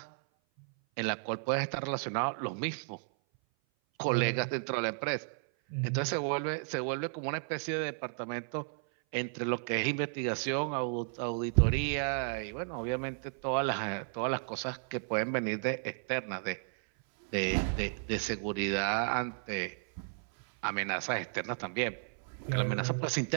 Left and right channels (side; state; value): left; silent; 55 dB below the other